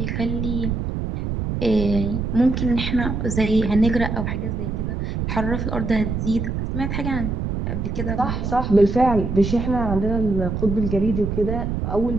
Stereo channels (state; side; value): noise; right; rumble, 2 dB below the sound